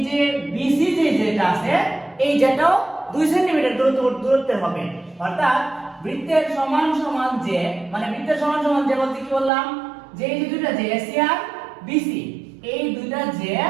যে বিসি যেটা আছে, এই যেটাও 2 সেন্টিমিটার দূরত্বে হবে। অর্থাৎ বৃত্তের সমান সমান যে, মানে বৃত্তের সমান সমান যে বলতে কি বললাম, যে এই যে দুইটা যে এসি আর বিসি, এই দুইটা যে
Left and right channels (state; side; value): drops out; left; at 9.5 s